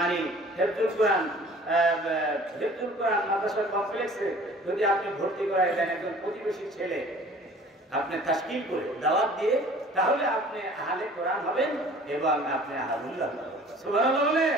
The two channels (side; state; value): both; normal; correlation 0.48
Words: হেফজুল কোরআন মাদ্রাসা কমপ্লেক্সে যদি আপনি ভর্তি করায় দেন একজন প্রতিবেশী ছেলে, আপনি তাশকিল করে দাওয়াত দিয়ে, তাহলে আপনি আহলে কোরআন হবেন এবং আপনি আহলুল্লাহ হবেন। সুবহানাল্লাহ বলে।